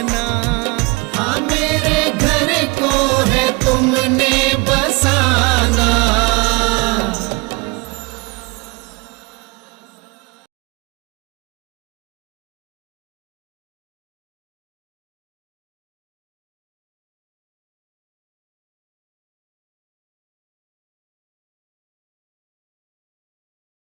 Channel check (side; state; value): left; quieter; 28.1 dB